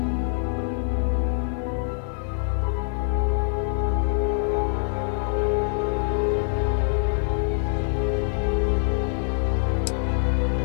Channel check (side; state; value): right; silent; digital silence